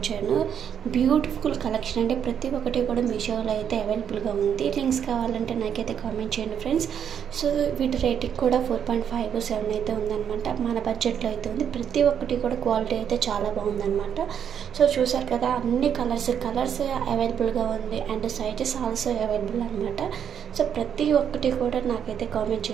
బ్యూటిఫుల్ కలెక్షన్ అంటే ప్రతి ఒక్కటి కూడా మీషోలో అయితే అవైలబుల్ గా ఉంది। లింక్స్ కావాలంటే నాకైతే కామెంట్ చేయండి ఫ్రెండ్స్। సో వీటి రేటింగ్ కూడా 4.57 అయితే ఉందన్నమాట। మన బడ్జెట్ లో అయితే ఉంది। ప్రతి ఒక్కటి కూడా క్వాలిటీ అయితే చాలా బాగుందన్నమాట। సో చూశారు కదా అన్ని కలర్స్ అవైలబుల్ గా ఉంది అండ్ సైజెస్ ఆల్సో అవైలబుల్ అన్నమాట। సో ప్రతి ఒక్కటి కూడా నాకైతే కామెంట్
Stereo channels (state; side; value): quieter; left; 8.4 dB